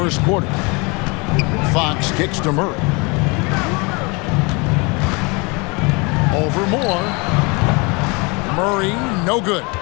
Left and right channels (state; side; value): quieter; right; 28.9 dB